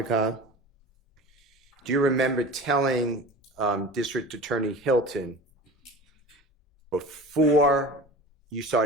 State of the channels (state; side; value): normal; both; correlation 0.36